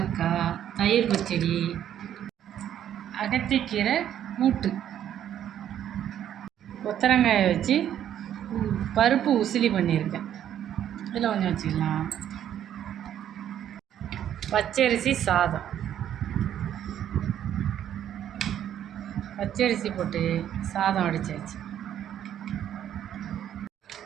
தயிர் பச்சடி, அகத்திக்கீரை கூட்டு, கொத்தரங்காயை வச்சு பருப்பு உசிலி பண்ணியிருக்கேன். இதில் கொஞ்சம் வச்சுக்கலாம். பச்சரிசி சாதம், பச்சரிசி போட்டு சாதம் வடிச்சாச்சு.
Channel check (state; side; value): quieter; left; 10.4 dB